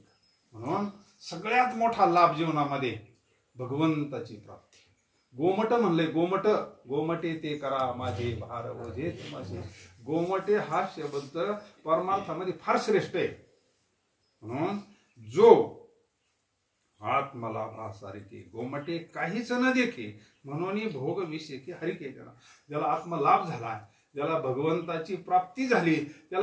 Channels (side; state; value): both; identical; correlation 1.00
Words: म्हणून सगळ्यात मोठा लाभ जीवनामध्ये भगवंताची प्राप्ती. गोमट म्हणले, गोमट गोमटे ते करा माझे भार ओझे माझे. गोमटे हा शब्द परमार्थामध्ये फार श्रेष्ठ आहे. म्हणून जो आत्मलाभासारखे गोमटे काहीच न देखे म्हणून भोग विषयी हरिके. ज्याला आत्मलाभ झाला ज्याला भगवंताची प्राप्ती झाली